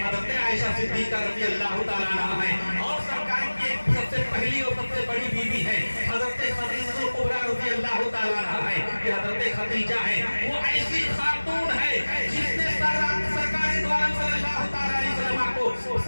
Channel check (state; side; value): inverted; both; correlation -1.00